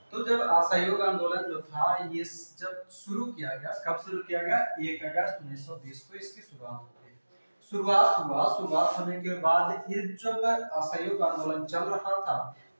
तो जब असहयोग आंदोलन जो था ये जब शुरू किया गया, कब शुरू किया गया, 1 अगस्त 1920 को इसकी शुरुआत हो गई। शुरुआत होने के बाद ये जब असहयोग आंदोलन चल रहा था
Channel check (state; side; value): inverted; both; correlation -1.00